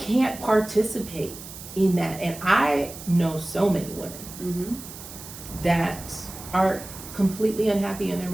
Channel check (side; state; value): right; noise; hiss, 14 dB below the sound